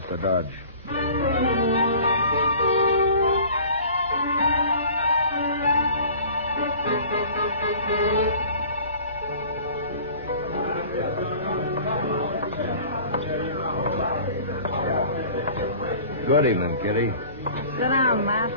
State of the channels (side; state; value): both; inverted; correlation -0.45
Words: to Dodge. Good evening, Kitty. Sit down, Matt.